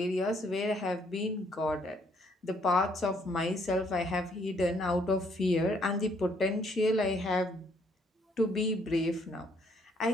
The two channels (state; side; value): normal; both; correlation 0.67